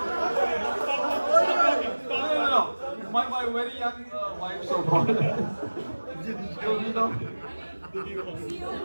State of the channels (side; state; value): both; inverted; correlation -1.00